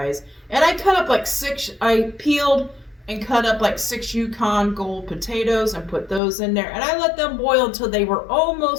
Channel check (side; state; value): right; drops out; at 6.2 s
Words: And I cut up I peeled and cut up like 6 Yukon Gold potatoes and put those in there. And I let them boil until they were